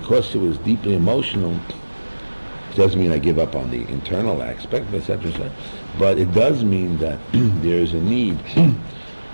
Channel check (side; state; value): both; inverted; correlation -1.00